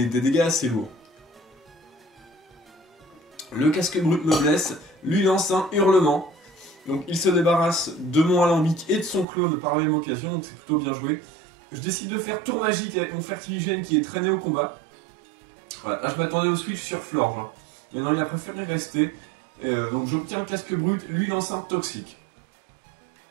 dégâts assez lourds. Le casque brut me blesse, lui lance un hurlement. Donc il se débarrasse de mon alambic et de son clone par la même occasion, donc c'est plutôt bien joué. Je décide de faire tour magique avec mon Fertiligène qui est traîné au combat. Voilà, là je m'attendais au switch sur Florge. Hein. Mais non, il a préféré rester. Donc j'obtiens un casque brut, lui lance un toxique.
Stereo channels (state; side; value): drops out; left; at 9.2 s